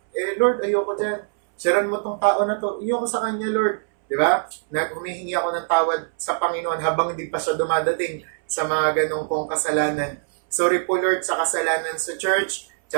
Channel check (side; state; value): left; silent; 64 dB below the other